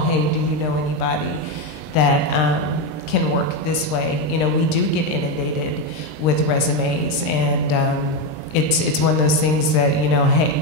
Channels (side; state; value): right; late; 20 ms